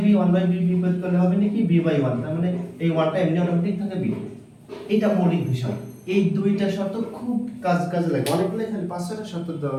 1/b বিপরীত করলে হবে নাকি b/1, তার মানে এই 1টা এমনি অটোমেটিক থাকে b। এটা মৌলিক বিষয়। এই দুইটা শর্ত খুব কাজে লাগে, অনেকগুলো এখানে 5-6টা শর্ত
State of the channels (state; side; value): identical; both; correlation 1.00